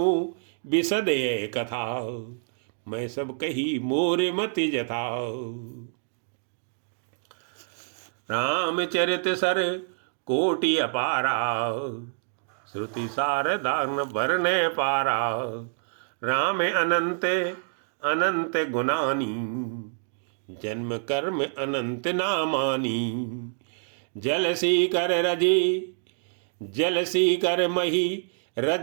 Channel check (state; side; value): silent; left; digital silence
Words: बिसदे कथा, मैं सब कही मोर मति जथा। रामचरित सर कोटि अपारा, श्रुति सारदान वर्णे पारा। राम अनंत अनंत गुणानी, जन्म कर्म अनंत नामानी। जलसी कर रजी जलसी कर मही,